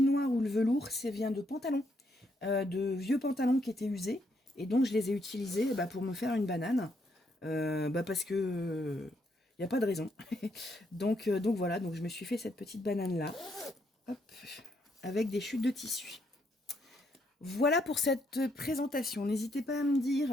noir ou le velours, ça vient de pantalons. De vieux pantalons qui étaient usés. Et donc je les ai utilisés pour me faire une banane. Parce que il n'y a pas de raison. donc voilà, donc je me suis fait cette petite banane là. Hop, avec des chutes de tissu. Voilà pour cette présentation. N'hésitez pas à me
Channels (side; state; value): both; normal; correlation 0.74